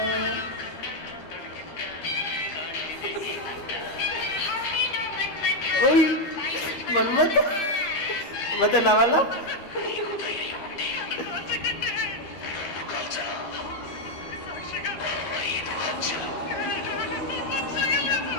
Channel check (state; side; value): late; right; 13 ms